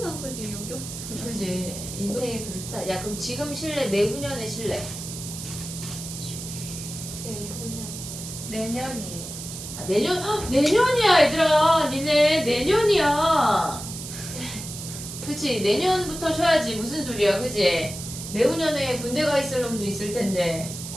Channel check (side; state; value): right; noise; hiss, 9 dB below the sound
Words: 않고 지금 여기 왔잖아. 그지 인생이 그렇다. 야 그럼 지금 쉴래? 내후년에 쉴래? 내후년. 내년이에요. 아, 내년 내년이야 얘들아. 니네 내년이야. 그치 내년부터 쉬어야지. 무슨 소리야 그지? 내후년에 군대 가 있을 놈도 있을 텐데.